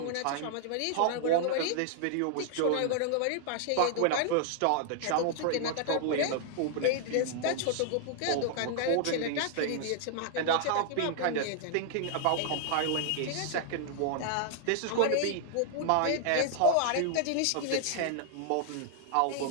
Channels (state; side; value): different; both; correlation -0.01